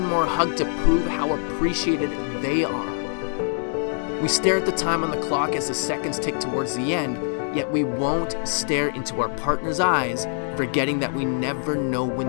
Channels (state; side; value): silent; right; digital silence